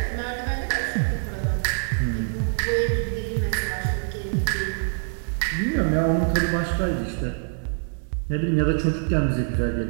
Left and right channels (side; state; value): left; silent; digital silence